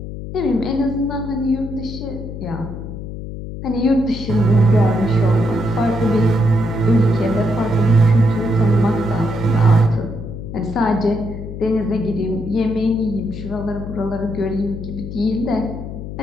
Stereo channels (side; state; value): left; noise; hum, 9 dB below the sound